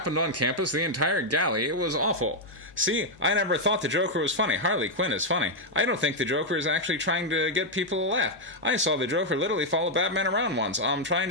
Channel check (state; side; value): normal; both; correlation -0.01